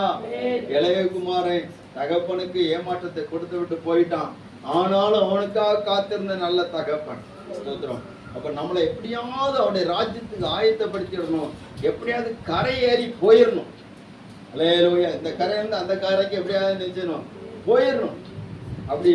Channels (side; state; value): both; identical; correlation 1.00